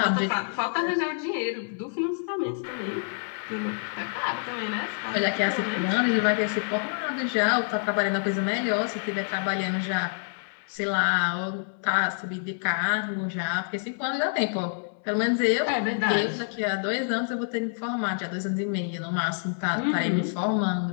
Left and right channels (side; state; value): right; silent; 60 dB below the other